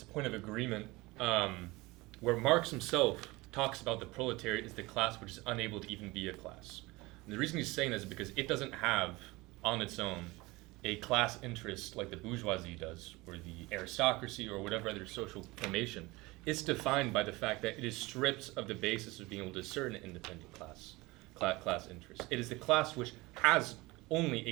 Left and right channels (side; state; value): left; quieter; 22.1 dB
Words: a point of agreement where Marx himself talks about the proletariat as the class which is unable to even be a class. And the reason he's saying that is because it doesn't have on its own a class interest like the bourgeoisie does, or the aristocracy, or whatever other social formation. It's defined by the fact that it is stripped of the basis of being able to discern an independent class interest. It is the class which has only